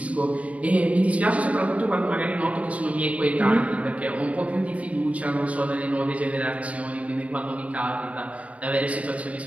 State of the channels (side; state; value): left; late; 0.067 ms